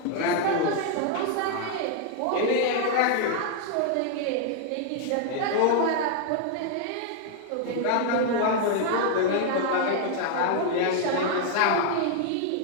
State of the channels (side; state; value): both; different; correlation 0.00